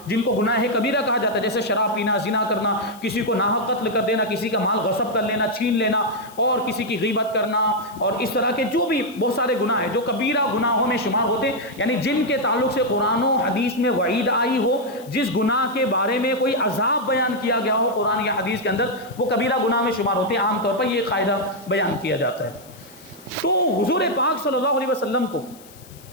جن کو گناہ کبیرہ کہا جاتا ہے، جیسے شراب پینا، زنا کرنا، کسی کو ناحق قتل کر دینا، کسی کا مال غصب کر لینا، چھین لینا، اور کسی کی غیبت کرنا، اور اس طرح کے جو بھی بہت سارے گناہ ہیں جو کبیرہ گناہوں میں شمار ہوتے ہیں، یعنی جن کے تعلق سے قرآن و حدیث میں وعید آئی ہو، جس گناہ کے بارے میں کوئی عذاب بیان کیا گیا ہو قرآن یا حدیث کے اندر، وہ کبیرہ گناہ میں شمار ہوتے ہیں. عام طور پر یہ قاعدہ بیان کیا جاتا ہے. تو حضور پاک صلی اللہ علیہ وسلم کو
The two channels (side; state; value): left; noise; hiss, 23 dB below the sound